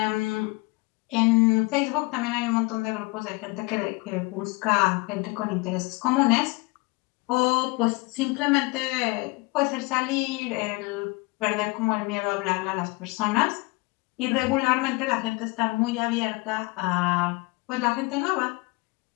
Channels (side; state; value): right; quieter; 26.0 dB